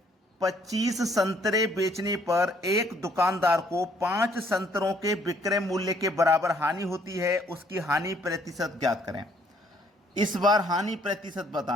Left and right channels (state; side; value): normal; both; correlation 0.65